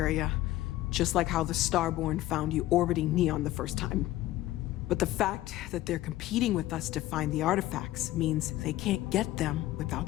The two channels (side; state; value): right; quieter; 15.6 dB